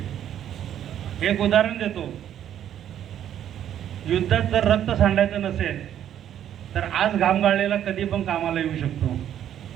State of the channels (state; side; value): quieter; left; 10.5 dB